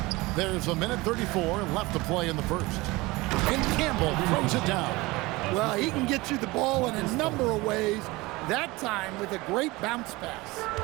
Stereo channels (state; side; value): quieter; left; 21.9 dB